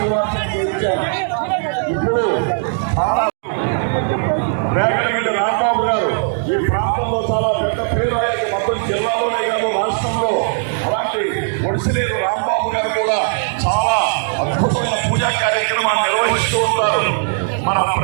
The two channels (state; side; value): silent; left; digital silence